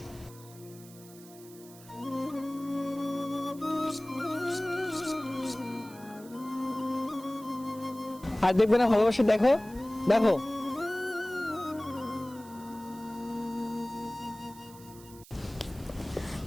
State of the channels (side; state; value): right; noise; hiss, 21 dB below the sound